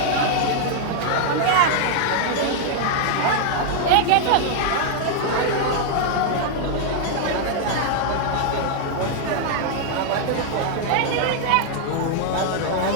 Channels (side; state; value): both; different; correlation 0.00